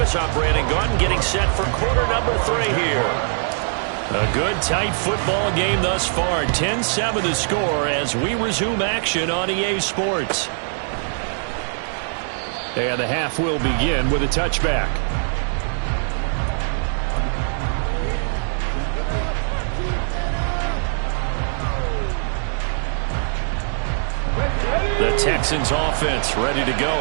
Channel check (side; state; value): left; silent; digital silence